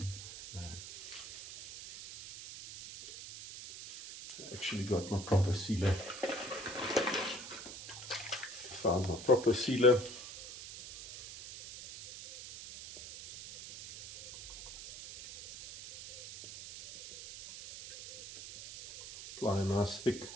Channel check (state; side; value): noise; right; hiss, 12 dB below the sound